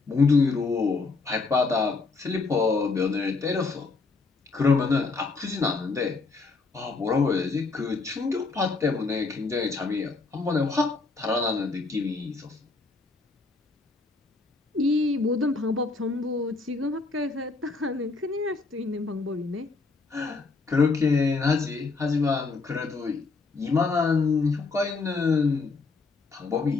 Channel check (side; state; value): right; quieter; 4.1 dB